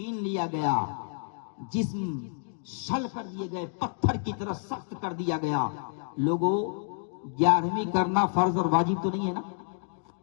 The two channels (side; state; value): right; silent; digital silence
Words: لیا گیا، جسم شل کر دیے گئے، پتھر کی طرح سخت کر دیا گیا. لوگوں 11ویں کرنا فرض اور واجب تو نہیں ہے نا.